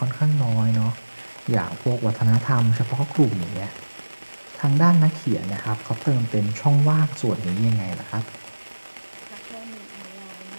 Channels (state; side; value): inverted; both; correlation -1.00